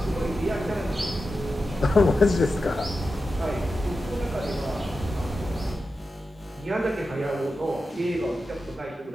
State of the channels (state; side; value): normal; both; correlation 0.91